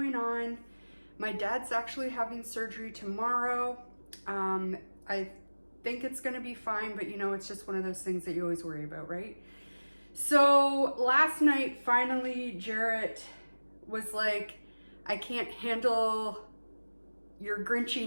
on. My dad's actually having surgery tomorrow. I think it's going to be fine, but it's just one of those things that you always worry about, right? So last night, finally, Jarrett was like, I can't handle your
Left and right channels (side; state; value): both; inverted; correlation -1.00